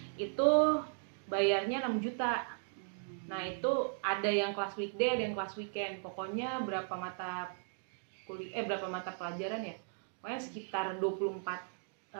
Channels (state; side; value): silent; left; digital silence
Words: Itu bayarnya 6 juta. Nah, itu ada yang kelas weekday, ada yang kelas weekend. Pokoknya berapa mata pelajaran ya? Pokoknya sekitar